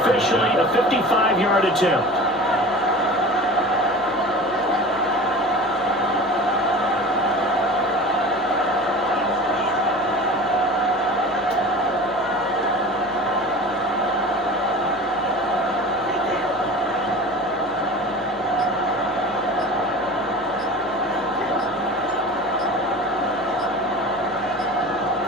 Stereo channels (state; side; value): normal; both; correlation 0.36